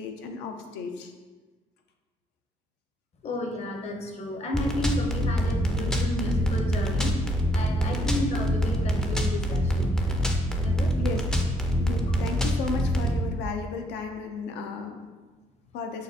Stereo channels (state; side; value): normal; both; correlation 0.70